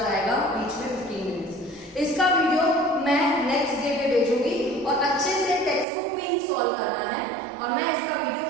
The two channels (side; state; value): left; drops out; at 5.9 s